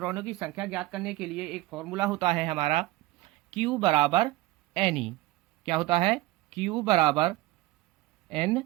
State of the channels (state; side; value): quieter; left; 18.3 dB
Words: की संख्या ज्ञात करने के लिए एक फॉर्मूला होता है हमारा Q बराबर Ne। क्या होता है? Q बराबर Ne।